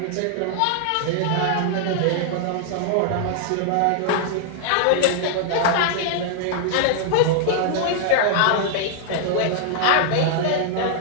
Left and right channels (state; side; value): different; both; correlation -0.01